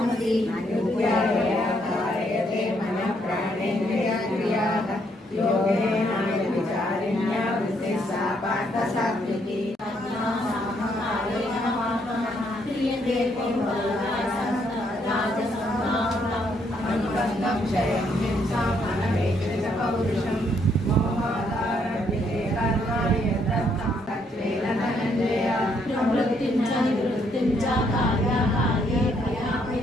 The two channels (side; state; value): both; normal; correlation 0.72